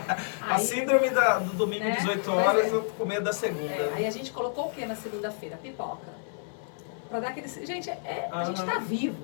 A síndrome do domingo, né? 18 horas, eu com medo da segunda. Aí a gente colocou o que na segunda-feira? Pipoca. Pra dar aquele... Gente, a gente tá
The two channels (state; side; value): silent; right; digital silence